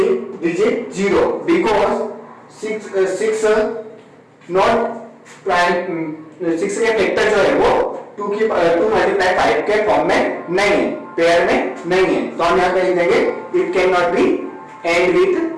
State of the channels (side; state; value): both; identical; correlation 1.00